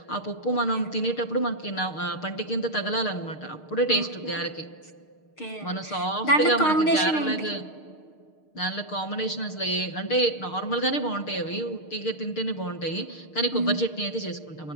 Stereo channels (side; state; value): right; late; 6.5 ms